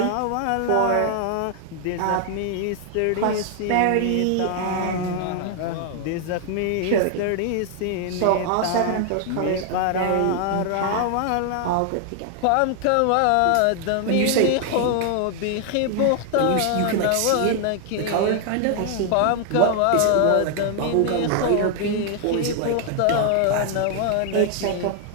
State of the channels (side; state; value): both; different; correlation 0.00